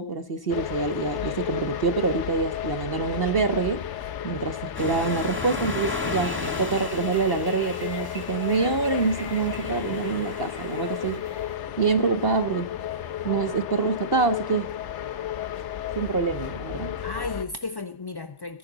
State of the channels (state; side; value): late; right; 1.0 ms